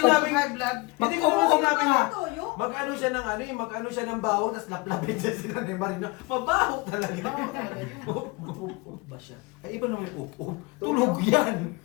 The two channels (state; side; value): quieter; right; 26.0 dB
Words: high blood. Hindi ko naman sinabing na. Toyo? Mag-ano siya ng ano, yung mag-ano siya ng bawang, tapos laplapin siya sila ni Marino. Mabaho talaga. Baho talaga yun. Ba siya? Ay, iba naman yung upo. Tulog yan.